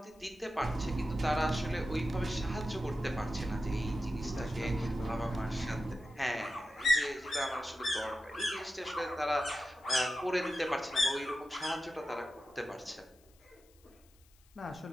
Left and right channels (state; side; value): noise; left; hiss, 30 dB below the sound